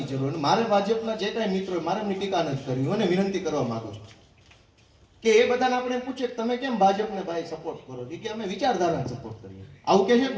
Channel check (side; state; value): both; identical; correlation 1.00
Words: જરૂર. અને મારે ભાજપના જે કાંઈ મિત્રો મારે એમની ટીકા નથી કરવી, અને વિનંતી કરવા માંગુ છું કે એ બધાને આપણે પૂછે કે તમે કેમ ભાજપને ભાઈ સપોર્ટ કરો છો, કે અમે વિચારધારાને સપોર્ટ કરીએ. આવું કહે છે